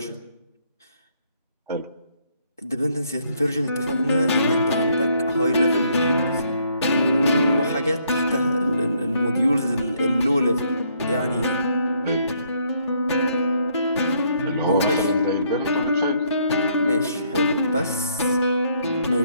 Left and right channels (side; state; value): both; inverted; correlation -0.69